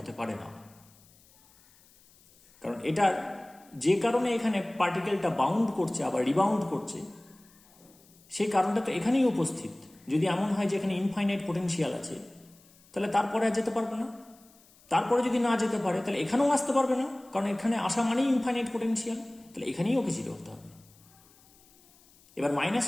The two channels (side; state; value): left; noise; hiss, 28 dB below the sound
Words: পারে না। কারণ এটার যে কারণে এখানে পার্টিকেলটা বাউন্ড করছে আবার রিবাউন্ড করছে, সেই কারণটা তো এখানেই উপস্থিত। যদি এমন হয় যে এখানে ইনফাইনাইট পোটেনশিয়াল আছে, তাহলে তারপরে আর যেতে পারবে না। তারপরে যদি না যেতে পারে, তাহলে এখানেও আসতে পারবে না, কারণ এখানে আসা মানেই ইনফাইনাইট পোটেনশিয়াল, তাহলে এখানেই ওকে জিরো হতে হবে। এবার মাইনাস